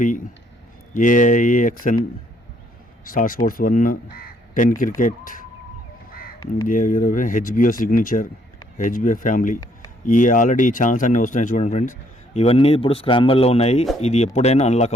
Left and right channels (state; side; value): normal; both; correlation 0.67